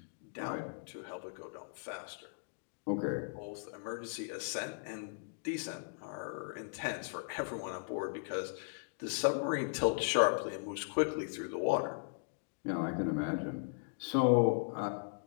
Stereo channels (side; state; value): right; silent; digital silence